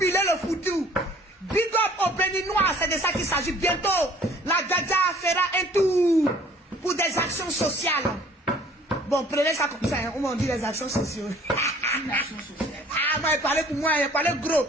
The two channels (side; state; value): both; normal; correlation 0.54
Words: le foutu? Big up au Béninois, c'est de ça qu'il s'agit. Bientôt, la Dja fera un tour pour des actions sociales. Bon, prenez ça comme ça, hein. On dit les actions sociales. Une action sociale. Ah, moi, il parlait pour moi, il parlait gros.